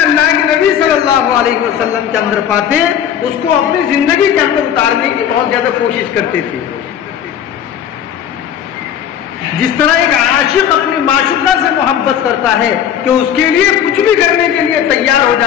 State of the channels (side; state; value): right; quieter; 9.3 dB